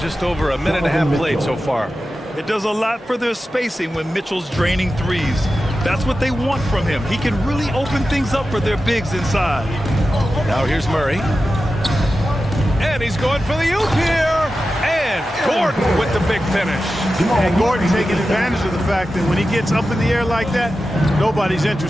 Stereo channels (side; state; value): both; normal; correlation 0.92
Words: Just over a minute and a half played so far. It does a lot for their spacing when Mitchell's draining threes. That's what they want from him. He can really open things up for their bigs inside. Now here's Murray. And he's going for the oop here. And Gordon with the big finish. And Gordon taking advantage of the fact that when he gets up in the air like that, nobody's